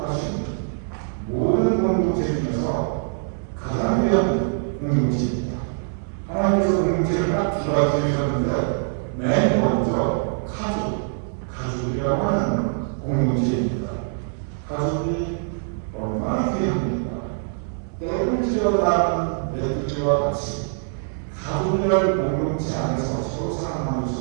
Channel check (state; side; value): silent; left; 63 dB below the other